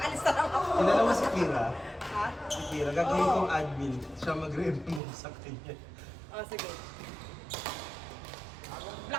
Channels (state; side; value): drops out; left; at 5.0 s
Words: alis na lang ako. Kilala mo si Kira? Ha? Si Kira, gagawin kong admin. Siya magre-remove sa kanya. Ah, sige.